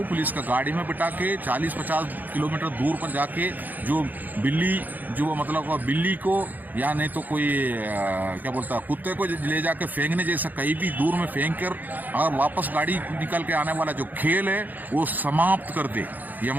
पुलिस का गाड़ी में बिठा के 40-50 किलोमीटर दूर पर जाके जो बिल्ली, जो मतलब बिल्ली को या नहीं तो कोई क्या बोलता है कुत्ते को ले जाके फेंकने जैसा कहीं भी दूर में फेंक कर अगर वापस गाड़ी निकल के आने वाला जो खेल है वो समाप्त कर दे, ये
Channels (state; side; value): late; left; 0.084 ms